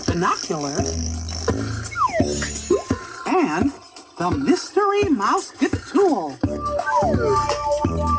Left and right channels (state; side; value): identical; both; correlation 1.00